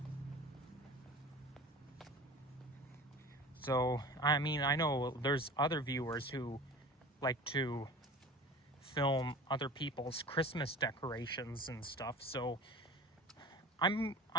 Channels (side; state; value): both; normal; correlation 0.38